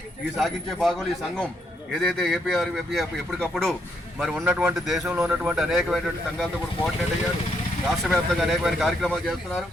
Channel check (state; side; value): normal; both; correlation 0.75